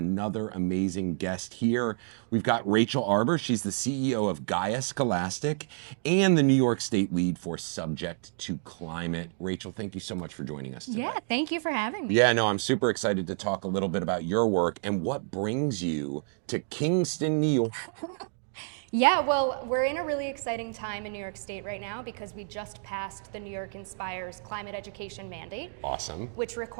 amazing guest here. We've got Rachel Arbour. She's the CEO of Gaia Scholastic and the New York State lead for Subject to Climate. Rachel, thank you so much for joining us today. Yeah, thank you for having me. Yeah, no, I'm super excited to talk a little bit about your work and what brings you to Kingston, New York. Yeah, well, we're in a really exciting time in New York State right now because we just passed the New York Inspires climate education mandate, Awesome. which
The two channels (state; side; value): silent; left; 58 dB below the other